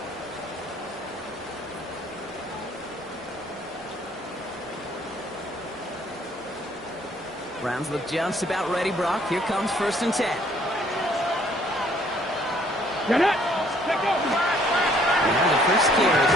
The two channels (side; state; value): both; normal; correlation 0.62